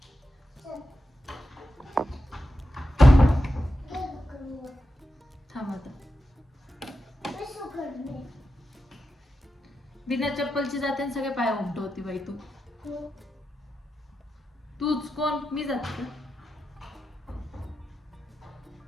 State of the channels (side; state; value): both; normal; correlation 0.89